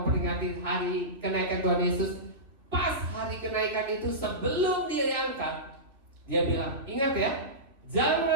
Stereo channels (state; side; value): late; left; 2.9 ms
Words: hari kenaikan Tuhan Yesus. Pas hari kenaikan itu sebelum dia diangkat, dia bilang, ingat ya,